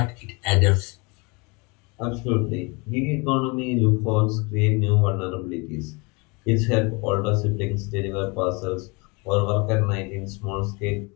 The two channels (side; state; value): right; quieter; 28.8 dB